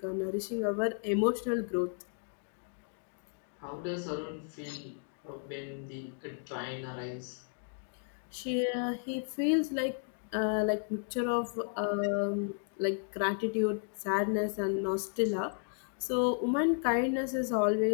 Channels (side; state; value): right; silent; 55 dB below the other